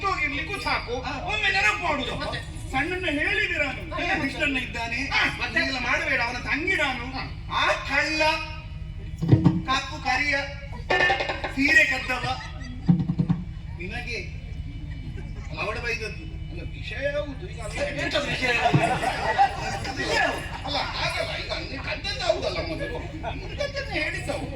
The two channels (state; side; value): identical; both; correlation 1.00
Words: ಹೋಗಿರ್ಲಿಕ್ಕೂ ಸಾಕು, ಒಮ್ಮೆ ನೆನಪು ಮಾಡುದು. ಸಣ್ಣನ್ನ ಹೇಳಿದೆ ನಾನು, ಕೃಷ್ಣನ್ನ ಇದ್ದಾನೆ ಮತ್ತೆಲ್ಲ ಮಾಡಬೇಡ, ಅವನ ತಂಗಿ ನಾನು. ಆ ಕಳ್ಳ ಕಪ್ಪು ಕರಿಯ ಸೀರೆ ಕದ್ದವ ನಿನಗೆ ಅವಡ ಬೈದದ್ದು. ವಿಷಯ ಹೌದು. ಈಗ ಅಲ್ಲ, ಹಾಗಲ್ಲ, ಈಗ ನೀನು ಕದ್ದದ್ದು ಹೌದಲ್ಲ, ಮೊದಲು ಹೇಳಿದ್ದವು.